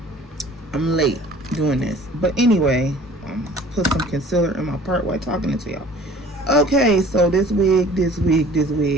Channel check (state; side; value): normal; both; correlation 0.49